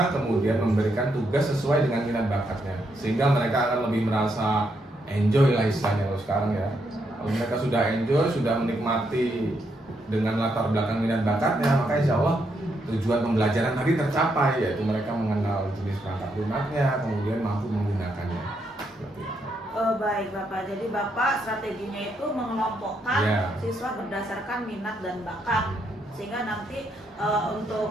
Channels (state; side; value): normal; both; correlation 0.78